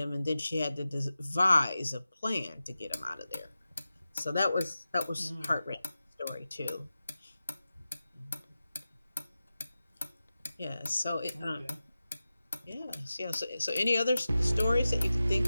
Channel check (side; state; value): both; inverted; correlation -0.94